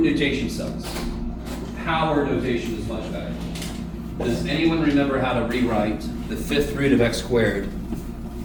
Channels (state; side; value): identical; both; correlation 1.00